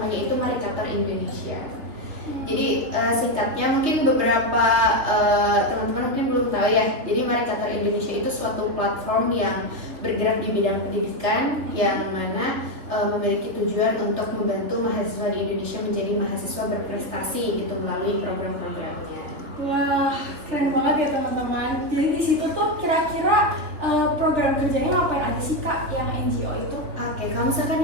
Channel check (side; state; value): left; late; 3.5 ms